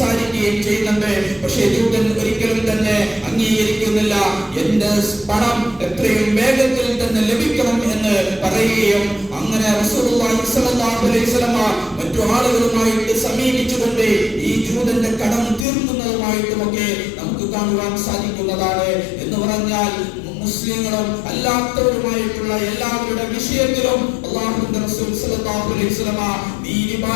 ചെയ്യുന്നുണ്ട്. പക്ഷേ ജൂതൻ ഒരിക്കലും തന്നെ അംഗീകരിക്കുന്നില്ല. എന്റെ പണം എത്രയും വേഗത്തിൽ തന്നെ ലഭിക്കണം എന്ന് പറയുകയും അങ്ങനെ റസൂലുള്ളാഹി സ്വല്ലല്ലാഹു അലൈഹി വസല്ലം മറ്റു ആളുകളുമായിട്ട് സമീപിച്ചുകൊണ്ട് ഈ ജൂതന്റെ കടം തീർക്കുന്നതുമായിട്ടുമൊക്കെ നമുക്ക് കാണുവാൻ സാധിക്കുന്നതാണ്. എന്ന് പറഞ്ഞാൽ മുസ്ലിങ്ങളും അല്ലാത്തവരുമായിട്ടുള്ള എല്ലാവരുടെ വിഷയത്തിലും അല്ലാഹുവിന്റെ റസൂൽ സല്ലല്ലാഹു അലൈഹി വസല്ലം നീതി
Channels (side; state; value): right; drops out; at 15.7 s